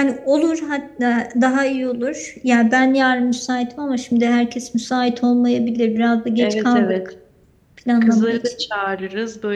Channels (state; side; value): identical; both; correlation 1.00